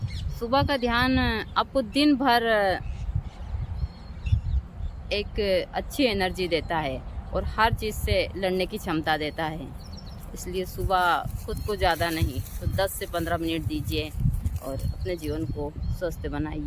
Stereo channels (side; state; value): both; identical; correlation 1.00